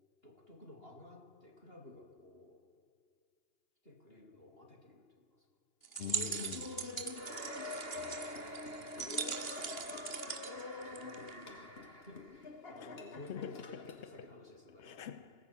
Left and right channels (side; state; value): right; late; 2.8 ms